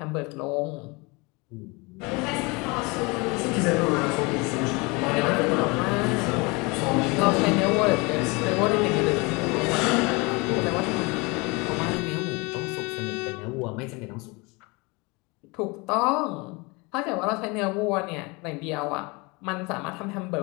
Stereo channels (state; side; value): quieter; right; 26.9 dB